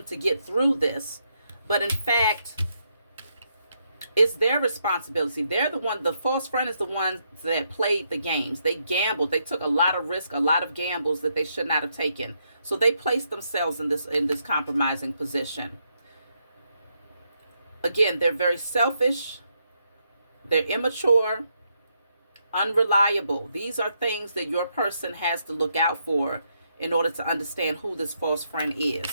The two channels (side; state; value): both; inverted; correlation -0.78